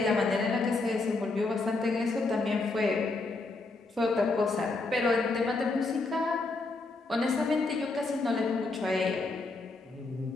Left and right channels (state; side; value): quieter; right; 3.5 dB